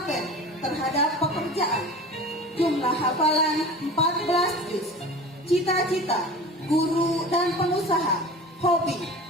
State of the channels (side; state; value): both; normal; correlation 0.37